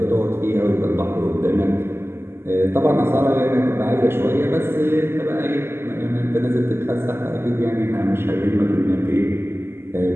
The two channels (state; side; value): late; left; 0.12 ms